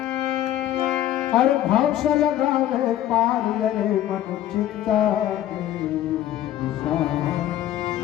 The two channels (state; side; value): quieter; right; 12.6 dB